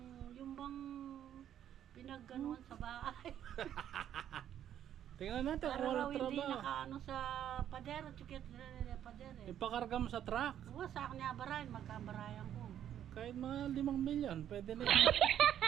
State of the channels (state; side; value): quieter; left; 10.4 dB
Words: bang pinagganuan sa bahay. Tingnan natin kung Para raw walang hindi trabaho. nakaano sa padero, chukit padero. Ipakarga mo sa truck. Oo, sa akin niya barayan, magkabarayan ko. Kahit mga 5 milyon, pwede na yun.